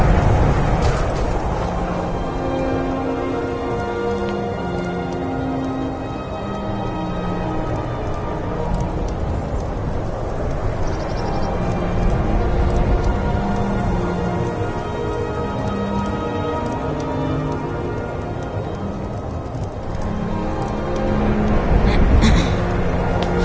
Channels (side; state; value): both; identical; correlation 1.00